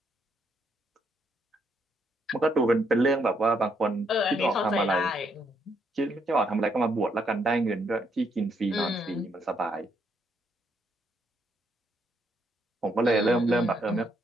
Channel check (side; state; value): both; normal; correlation 0.74